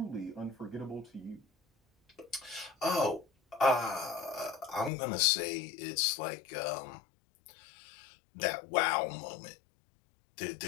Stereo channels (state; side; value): drops out; right; at 4.9 s